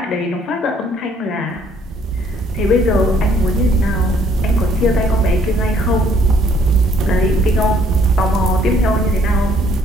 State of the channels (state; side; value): normal; both; correlation 0.64